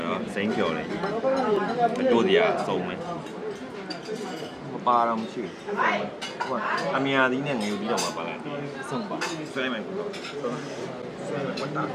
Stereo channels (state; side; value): identical; both; correlation 1.00